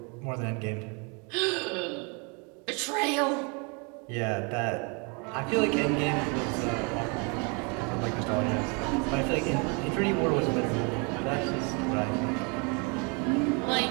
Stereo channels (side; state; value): left; quieter; 33.0 dB